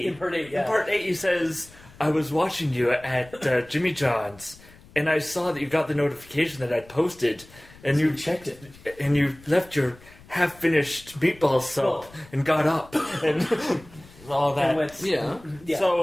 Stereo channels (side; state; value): left; noise; rumble, 23 dB below the sound